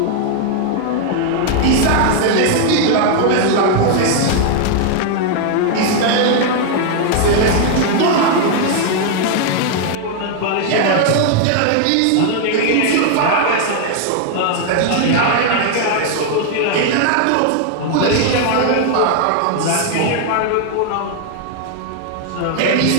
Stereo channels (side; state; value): both; different; correlation 0.00